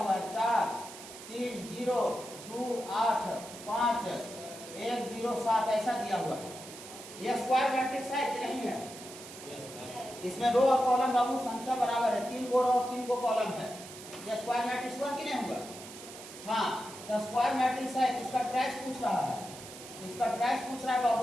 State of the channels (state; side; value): noise; right; hiss, 14 dB below the sound